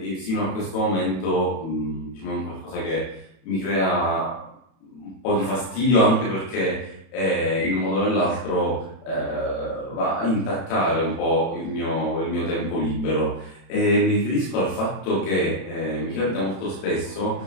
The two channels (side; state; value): right; late; 31 ms